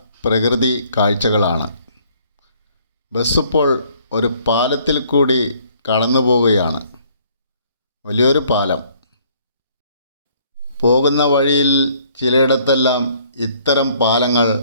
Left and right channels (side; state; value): both; inverted; correlation -0.62